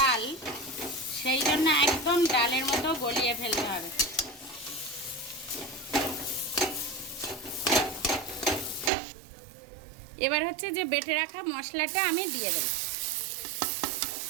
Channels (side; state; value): left; drops out; at 8.9 s